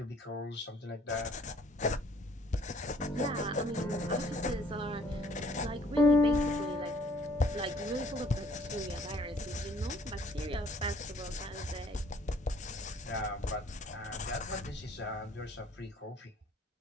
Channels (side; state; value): both; normal; correlation 0.59